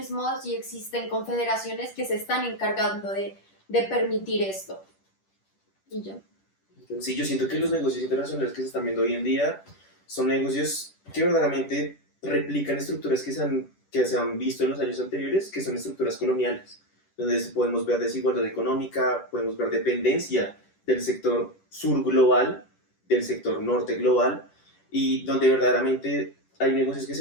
y existen confederaciones que se están encargando de permitir esto. Y ya. Sí, yo siento que los negocios internacionales que se están viendo hoy en día son negocios que verdaderamente replican estructuras que se han visto en los años anteriores, que son estructuras coloniales, donde podemos ver desigualdad económica, podemos ver dependencia del sector sur global, del sector norte global, y donde verdaderamente hay negocios que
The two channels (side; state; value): right; late; 10 ms